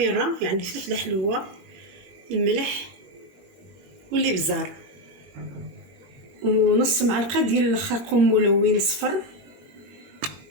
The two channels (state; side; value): late; left; 22 ms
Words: يعني فلفله حلوه، الملح والابزار، ونص معلقه ديال الخرقوم ملون صفر،